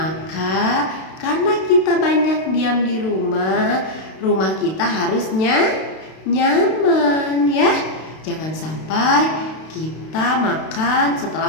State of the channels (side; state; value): right; late; 32 ms